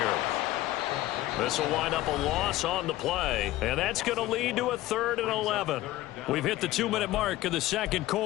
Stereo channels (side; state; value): right; quieter; 16.1 dB